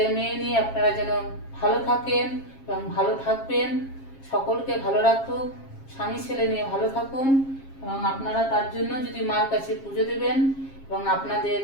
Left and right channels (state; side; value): late; right; 7.4 ms